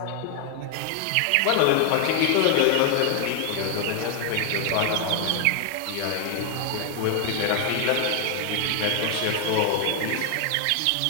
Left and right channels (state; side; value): different; both; correlation 0.00